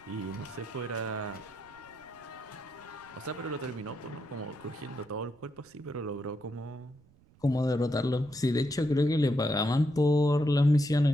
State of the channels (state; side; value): noise; right; rumble, 29 dB below the sound